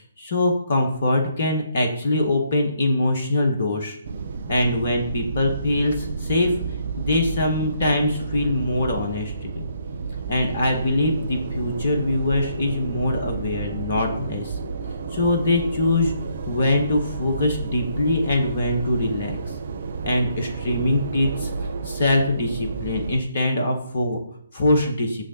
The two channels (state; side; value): inverted; both; correlation -0.72